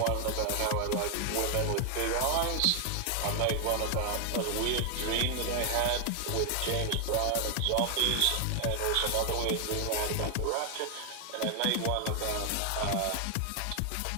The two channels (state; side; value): different; both; correlation 0.00